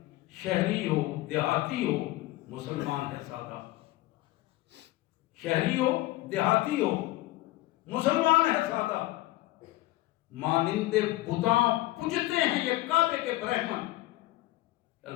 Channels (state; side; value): quieter; right; 17.9 dB